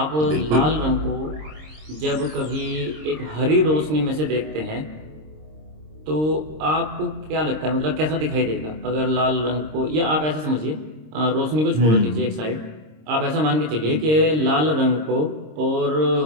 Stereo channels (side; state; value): left; late; 26 ms